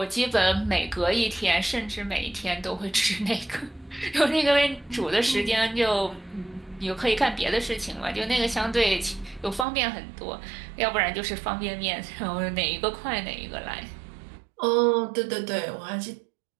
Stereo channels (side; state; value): left; drops out; at 9.7 s